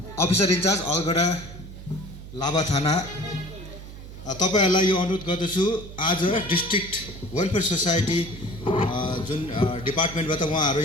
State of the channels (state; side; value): noise; right; hum, 13 dB below the sound